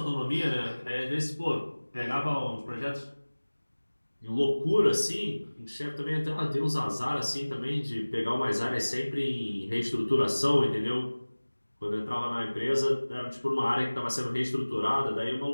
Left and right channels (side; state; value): both; inverted; correlation -1.00